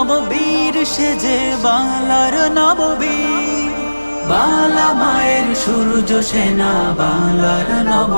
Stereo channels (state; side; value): inverted; both; correlation -1.00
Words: সেজে বাংলার নববীর, বাংলা মায়ের সূর্য সেনা বাংলার